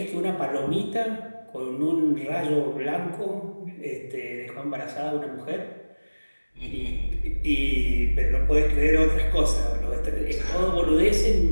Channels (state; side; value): inverted; both; correlation -1.00